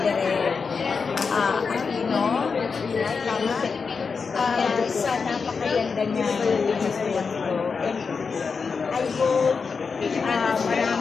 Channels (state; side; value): quieter; right; 5.2 dB